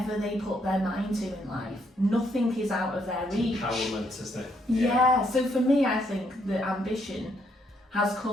they put their mind to in life. Nothing is out of their reach. Empowerment, isn't it? Yeah, so for me, I think the ambition has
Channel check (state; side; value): normal; both; correlation 0.73